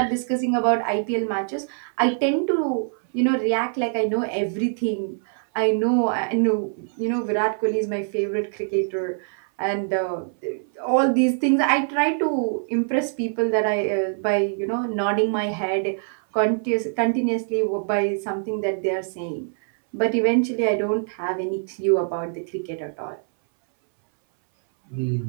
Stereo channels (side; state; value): left; silent; 61 dB below the other